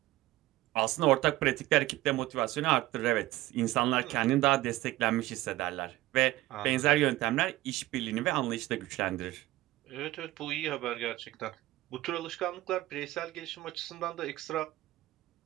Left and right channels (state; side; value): quieter; left; 17.0 dB